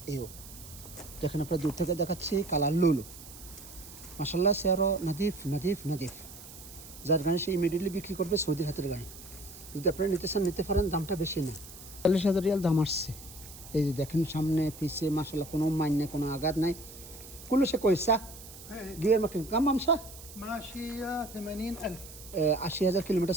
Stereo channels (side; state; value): right; noise; hiss, 16 dB below the sound